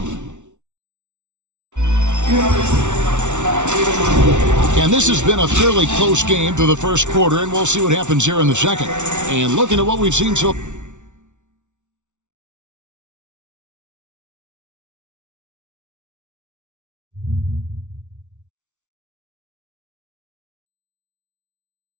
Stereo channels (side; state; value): left; late; 0.84 ms